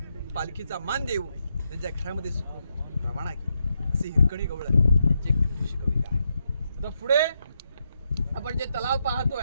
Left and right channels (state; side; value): inverted; both; correlation -0.82